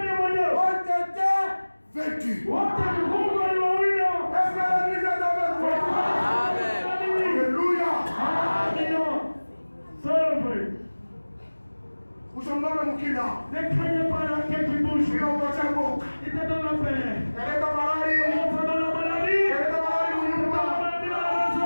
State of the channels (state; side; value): inverted; both; correlation -1.00